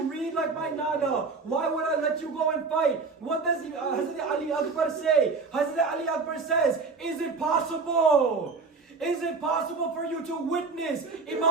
read like my nana. Why would I let you go and fight? What does Hazrat Ali Akbar say? Hazrat Ali Akbar says, is it possible? Is it possible for you to witness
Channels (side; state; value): left; quieter; 4.4 dB